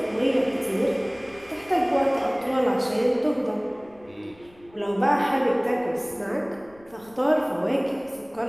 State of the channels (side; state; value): left; noise; rumble, 27 dB below the sound